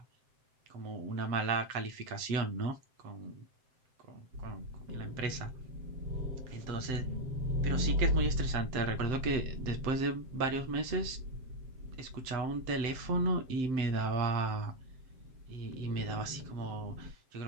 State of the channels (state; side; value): late; left; 7.7 ms